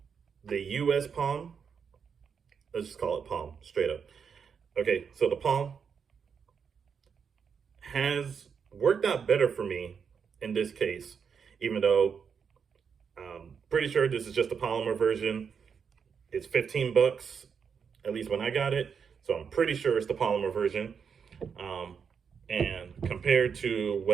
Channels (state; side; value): quieter; left; 6.5 dB